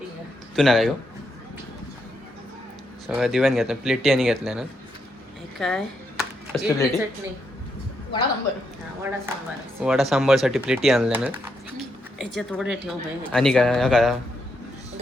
तू ना काय गो? सगळं दिव्यान घेतलं. प्लेटी आणि घेतल्या ना. काय कसली प्लेटी? चटणी, वडा सांबारसाठी प्लेटी आणल्या ना. याच्यात वडे ठेव बाई. आणि काय हा काय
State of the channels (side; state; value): both; normal; correlation 0.80